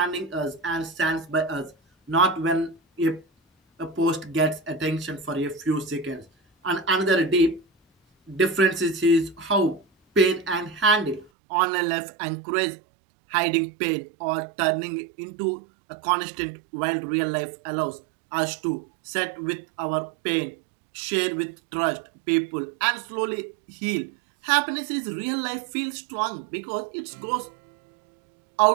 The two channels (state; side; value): drops out; left; at 11.3 s